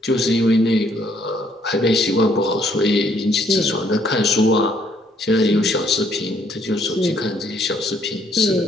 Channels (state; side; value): normal; both; correlation 0.67